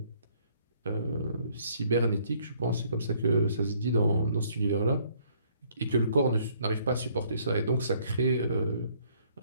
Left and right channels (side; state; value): both; inverted; correlation -0.64